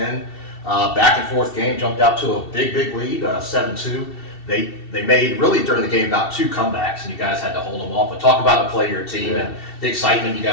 Back and forth game, jumped out to a big lead, 7-2. They made, really during the game, about 2 comebacks, and you guys had to hold them off. But talk about the play of your team and the excitement you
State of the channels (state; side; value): late; right; 2.7 ms